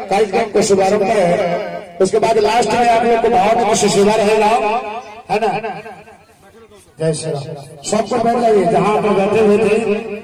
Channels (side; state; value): both; identical; correlation 1.00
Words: कार्यक्रम को शुभारंभ है, उसके बाद लास्ट में आप लोग को भाव से सेवा रहेगा, है ना। जय श्री राम। सबको बैठ जाइए, जहाँ आप बैठे हुए थे